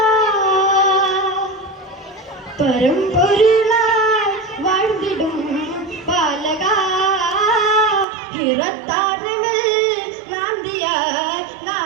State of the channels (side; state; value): left; drops out; at 8.1 s